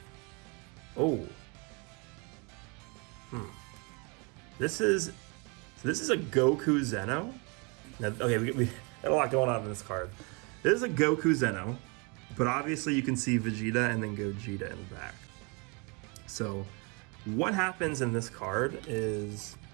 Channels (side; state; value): left; quieter; 31.4 dB